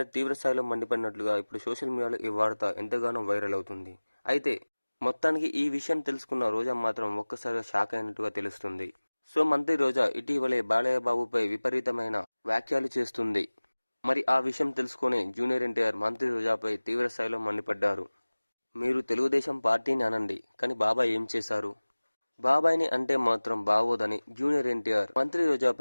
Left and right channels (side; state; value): both; inverted; correlation -1.00